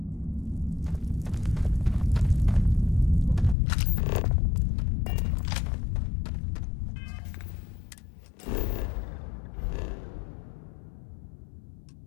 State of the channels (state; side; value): drops out; right; at 3.6 s